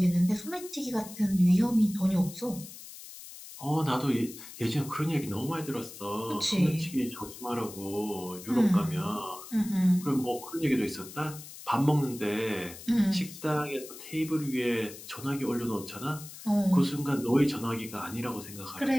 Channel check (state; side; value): noise; left; hiss, 15 dB below the sound